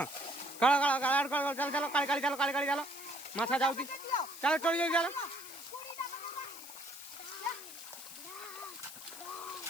काळा काळा काळा काळा चल चलो काळी काळी चलो काळी काळी चलो माछा जाउती चलो चली जाऊ चलो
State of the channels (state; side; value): noise; left; hiss, 13 dB below the sound